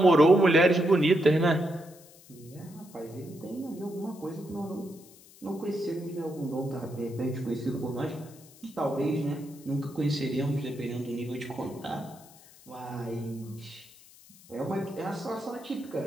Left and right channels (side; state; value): left; noise; hiss, 23 dB below the sound